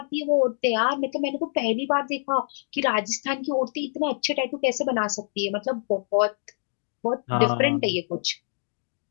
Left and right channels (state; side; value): silent; right; digital silence